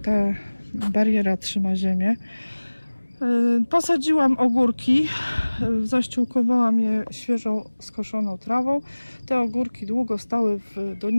bariera trzyma ziemię. Posadziłam ogórki, zaściółkowałam je świeżą skoszoną trawą. Te ogórki długo stały w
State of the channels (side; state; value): both; inverted; correlation -1.00